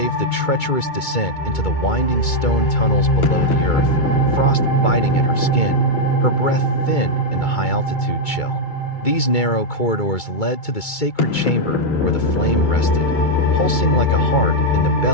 the treacherous descent into the winding stone tunnels below the earth, frost biting at her skin, her breath thin in the high-altitude chill. These narrow corridors led to the sacred chamber where the flame rested, pulsing like a heart in the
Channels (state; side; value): late; right; 2.2 ms